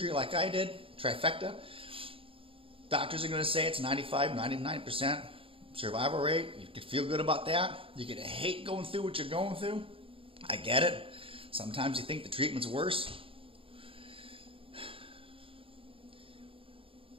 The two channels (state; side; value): late; left; 0.26 ms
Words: like I did, trifecta. Doctors are going to say it's 95, 99% survival rate. You can feel good about that. You're going to hate going through what you're going through. I get it. Sometimes you think the treatment's worse.